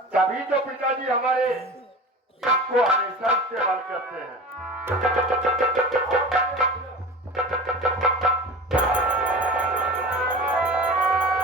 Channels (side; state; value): both; normal; correlation 0.33